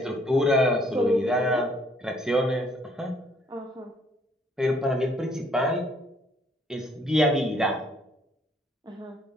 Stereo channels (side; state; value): both; normal; correlation 0.64